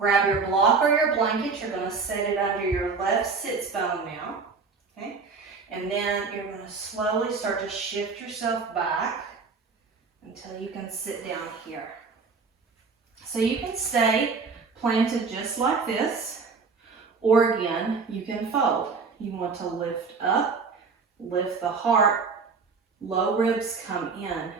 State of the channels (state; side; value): quieter; left; 4.8 dB